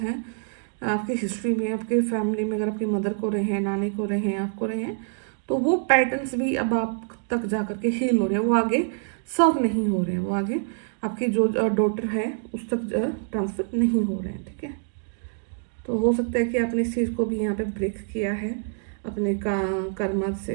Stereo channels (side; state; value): left; silent; digital silence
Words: आपकी हिस्ट्री में, आपके फैमिली में, अगर आपकी मदर को रहे हैं, नानी को रहे हैं, आपको रहे हैं, तो वो पैटर्न्स भी अब आप तक जा करके हील हो रहे हैं, वो आगे सर्व नहीं हो रहे हैं, वो आगे आपकी जो डॉटर है उस तक ट्रांसफर नहीं हो रहे हैं, ठीक है। तो हो सकता है कि आपने इस चीज़ को भी यहाँ पे ब्रेक किया है अपने कर्म